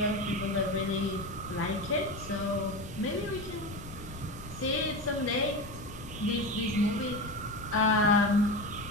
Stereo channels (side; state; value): left; noise; rumble, 14 dB below the sound